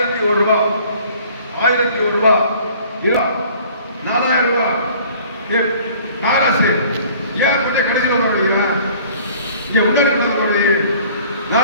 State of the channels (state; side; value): inverted; both; correlation -0.52